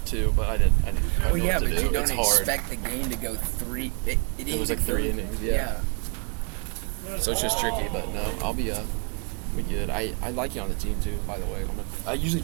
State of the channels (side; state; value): left; quieter; 36.8 dB